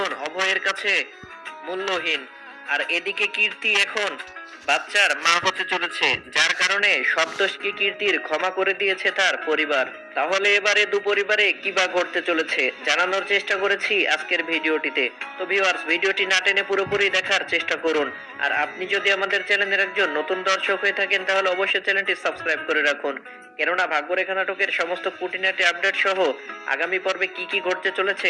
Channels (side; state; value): both; identical; correlation 1.00